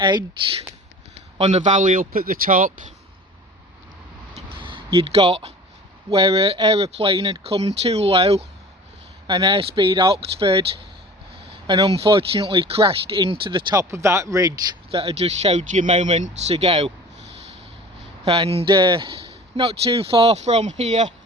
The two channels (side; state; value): both; normal; correlation 0.42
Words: on the valley up at the top, you'd got where an aeroplane had come too low, an Airspeed Oxford, and unfortunately crashed into the top of that ridge that I just showed you moments ago. And not too far from here,